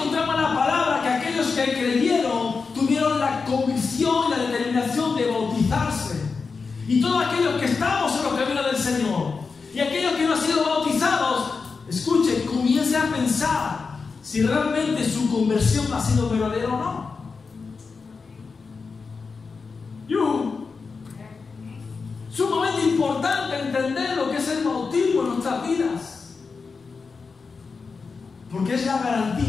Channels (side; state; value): right; quieter; 4.8 dB